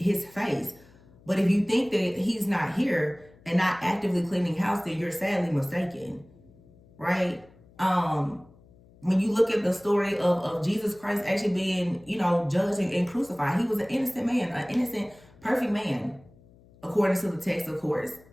face. But if you think that he's not here and not actively cleaning house, then you're sadly mistaken, right? When you look at the story of Jesus Christ actually being, you know, judged and crucified, he was an innocent man, an innocent, perfect man, according to the text, of course.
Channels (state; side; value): noise; left; hum, 27 dB below the sound